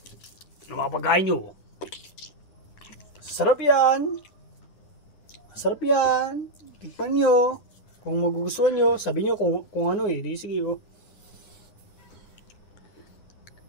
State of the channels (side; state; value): right; late; 9.8 ms